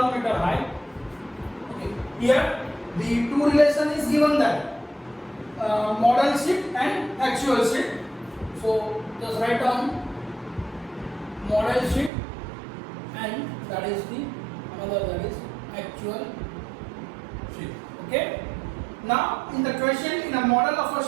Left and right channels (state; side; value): drops out; left; at 12.1 s